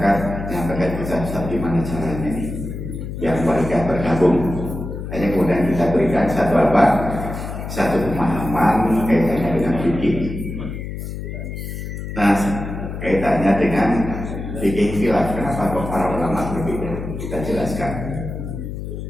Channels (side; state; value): left; noise; hum, 7 dB below the sound